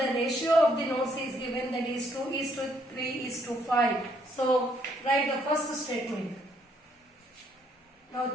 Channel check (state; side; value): normal; both; correlation 0.70